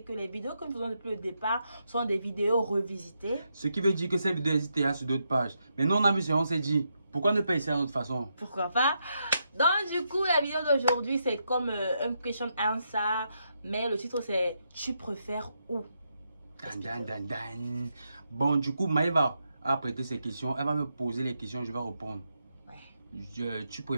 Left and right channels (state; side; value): inverted; both; correlation -0.82